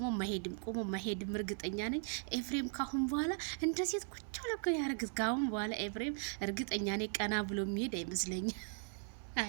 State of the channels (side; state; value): left; silent; 52 dB below the other